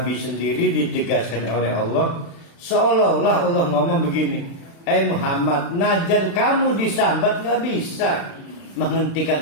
sendiri ditegaskan oleh Allah, seolah-olah Allah ngomong begini, Muhammad, najan kamu disambat nggak bisa menghentikan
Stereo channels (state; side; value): late; right; 36 ms